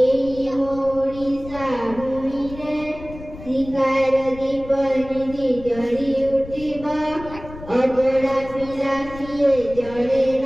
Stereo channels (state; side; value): noise; left; rumble, 15 dB below the sound